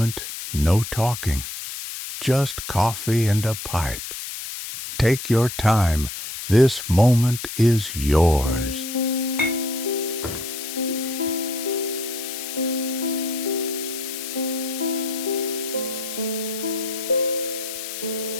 no talking, just coffee and a pipe. Take your time. This moment is yours.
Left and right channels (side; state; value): left; noise; hiss, 8 dB below the sound